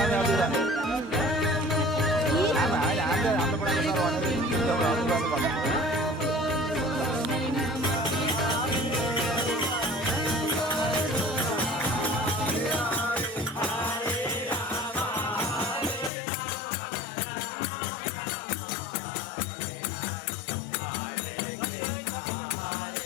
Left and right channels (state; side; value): drops out; right; at 16.1 s